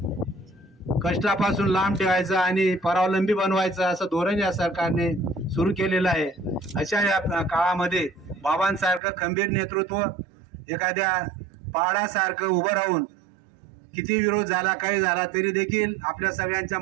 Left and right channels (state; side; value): drops out; left; at 9.0 s